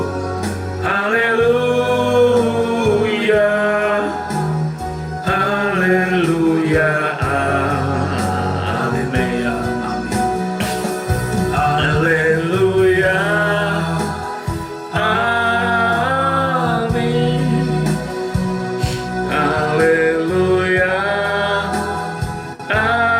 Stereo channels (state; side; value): identical; both; correlation 1.00